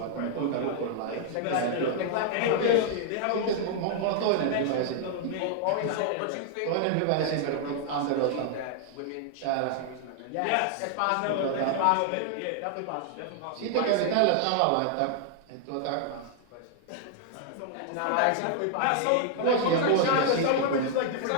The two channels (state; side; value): different; both; correlation 0.00